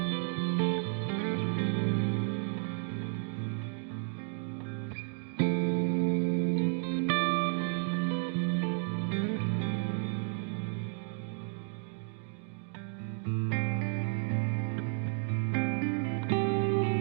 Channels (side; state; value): left; silent; 56 dB below the other